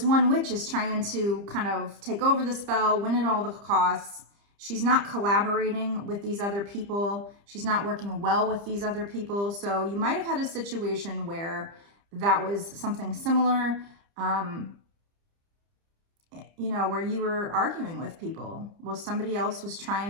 one witch is trying to kind of take over the spell, win at all the costs. She's not collaborating with these other people. She's not working well with these other people. So you might have had a situation where that was something similar, you know, where you were arguing with people. Well, somebody else was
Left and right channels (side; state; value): left; late; 30 ms